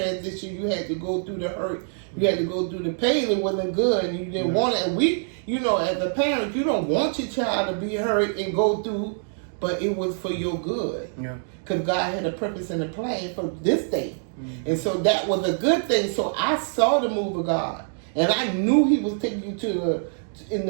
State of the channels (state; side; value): silent; left; digital silence